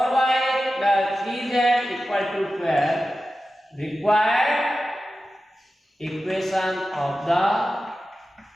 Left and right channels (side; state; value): both; normal; correlation 0.93